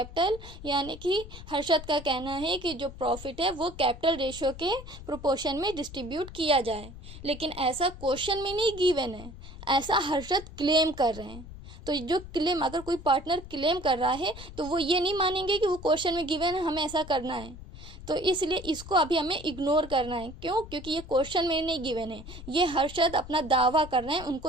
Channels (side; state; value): left; noise; rumble, 14 dB below the sound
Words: यानी कि हर्षद का कहना है कि जो प्रॉफिट है वो कैपिटल रेशियो के प्रोपोर्शन में डिस्ट्रीब्यूट किया जाए। लेकिन ऐसा क्वेश्चन में नहीं गिवन है, ऐसा हर्षद क्लेम कर रहे हैं। तो जो क्लेम, अगर कोई पार्टनर क्लेम कर रहा है तो वो ये नहीं मानेंगे कि वो क्वेश्चन में गिवन है, हमें ऐसा करना है। तो इसलिए इसको अभी हमें इग्नोर करना है। क्यों? क्योंकि ये क्वेश्चन में नहीं गिवन है, ये हर्षद अपना दावा कर रहे हैं,